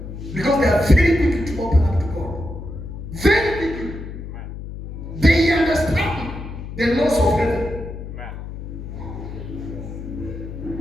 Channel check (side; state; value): left; noise; hum, 10 dB below the sound